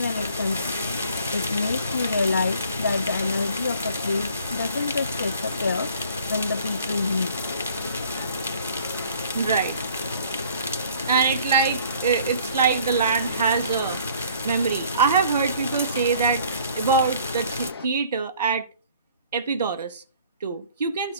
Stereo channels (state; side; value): inverted; both; correlation -0.55